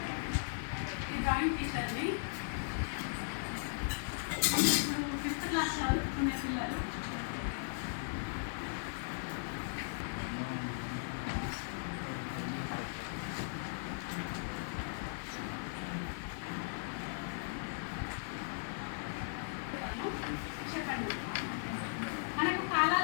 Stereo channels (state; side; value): silent; right; digital silence